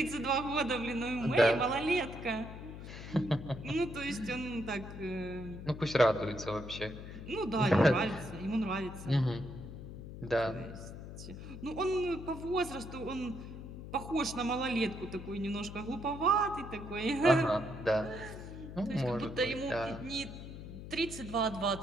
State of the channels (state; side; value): noise; left; hum, 11 dB below the sound